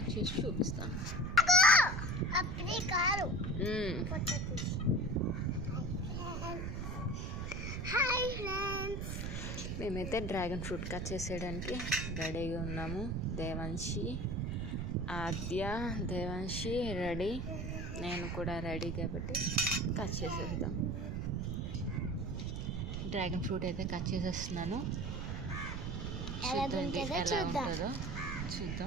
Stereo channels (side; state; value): right; noise; rumble, 3 dB below the sound